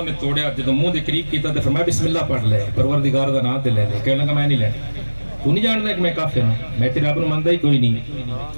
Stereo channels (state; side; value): inverted; both; correlation -1.00